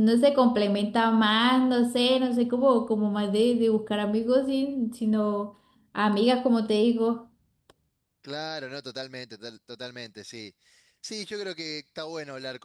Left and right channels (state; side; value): identical; both; correlation 1.00